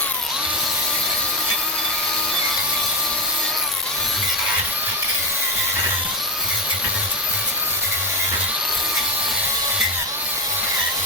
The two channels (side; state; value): both; normal; correlation 0.15